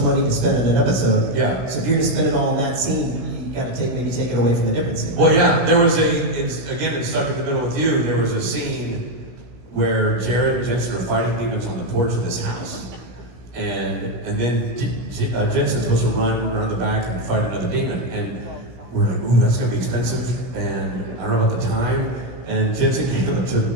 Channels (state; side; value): late; left; 16 ms